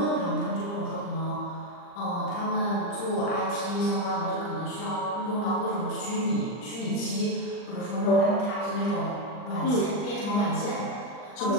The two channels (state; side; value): late; right; 39 ms